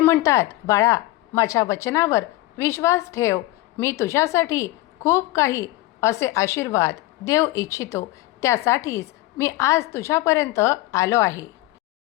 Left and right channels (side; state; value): right; quieter; 18.1 dB